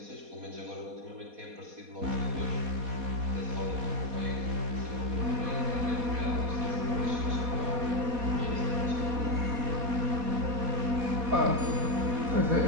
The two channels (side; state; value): left; late; 4.2 ms